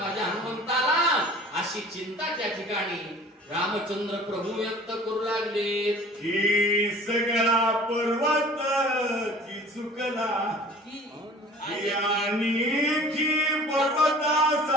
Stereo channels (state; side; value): normal; both; correlation 0.45